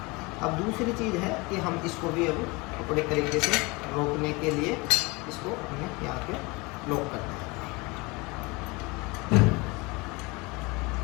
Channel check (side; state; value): right; quieter; 25.7 dB